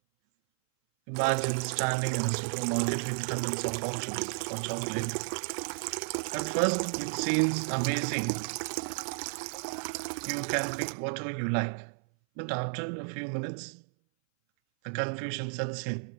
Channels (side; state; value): left; silent; 56 dB below the other